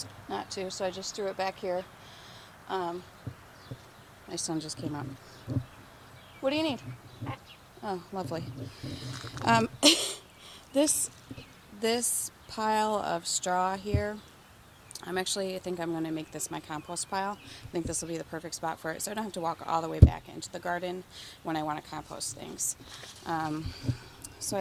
to, so I just threw it back here. My son just came up. What do you need? Oh, lovely. This pile of straw here, I think I'm going to make this my compost pile. I think this will be the perfect spot for it, so I don't have to walk all the way back into the garden when I want to compost things. So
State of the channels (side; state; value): both; identical; correlation 1.00